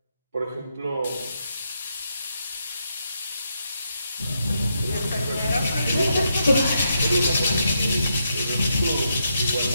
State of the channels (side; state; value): both; inverted; correlation -0.80